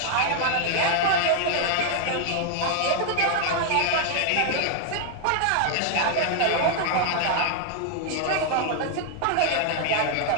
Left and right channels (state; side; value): different; both; correlation 0.00